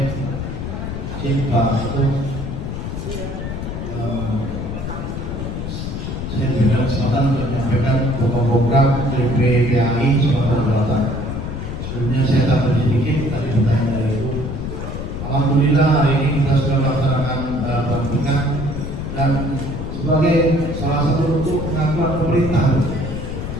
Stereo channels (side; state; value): left; noise; rumble, 5 dB below the sound